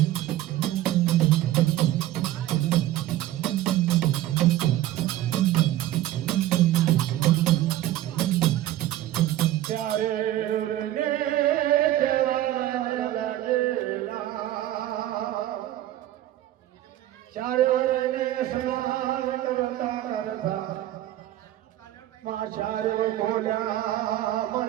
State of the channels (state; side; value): quieter; left; 14.0 dB